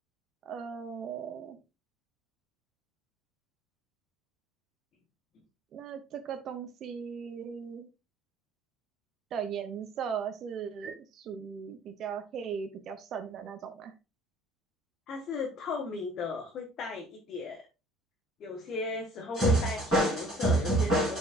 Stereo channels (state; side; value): normal; both; correlation 0.53